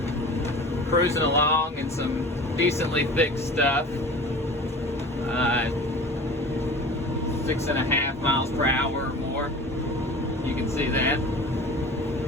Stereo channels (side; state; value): both; normal; correlation 0.38